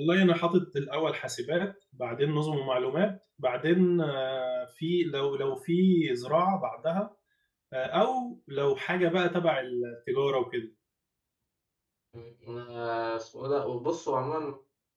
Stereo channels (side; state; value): both; identical; correlation 1.00